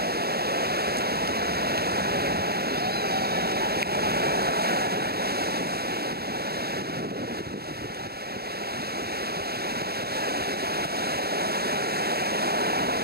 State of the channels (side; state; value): left; late; 0.46 ms